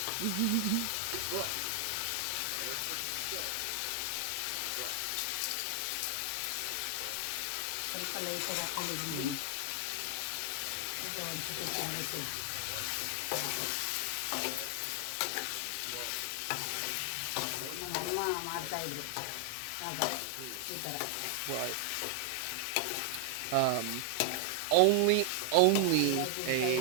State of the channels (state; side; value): different; both; correlation 0.00